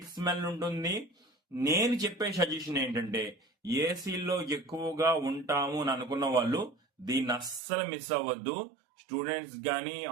స్మెల్ ఉంటుంది. నేను చెప్పే సజెషన్ ఏంటంటే ఏసీలో ఎక్కువగా ఉంటాము అని అనుకున్న వాళ్ళు దీన్ని అస్సలు మిస్ అవ్వద్దు. స్టూడెంట్స్ కానీ,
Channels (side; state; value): left; drops out; at 7.6 s